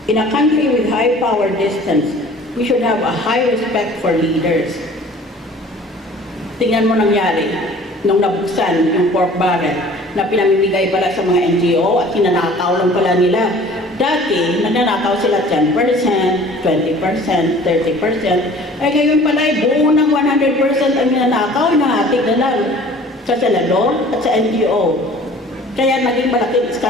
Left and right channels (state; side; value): normal; both; correlation 0.48